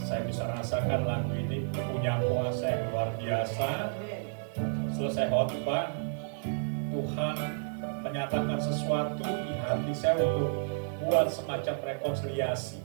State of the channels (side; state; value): left; silent; 56 dB below the other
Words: Saya bisa rasakan lagu ini punya kuasa yang luar biasa. Selesai khotbah, Tuhan menyatakan sesuatu di hati saya untuk buat semacam rekonsiliasi